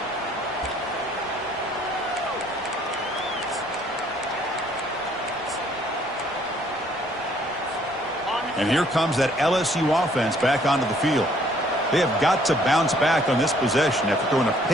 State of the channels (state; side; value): noise; left; rumble, 27 dB below the sound